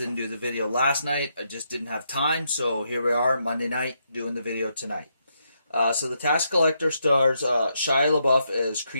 didn't do the video last night. I just didn't have time, so here we are, Monday night, doing the video tonight. So The Tax Collector stars Shia LaBeouf as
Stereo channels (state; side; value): inverted; both; correlation -0.79